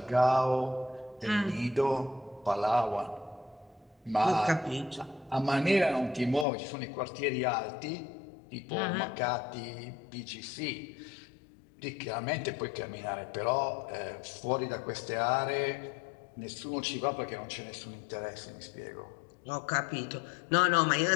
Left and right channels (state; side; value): drops out; right; at 6.5 s